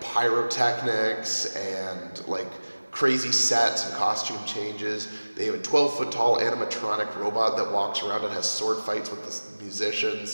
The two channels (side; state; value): both; inverted; correlation -1.00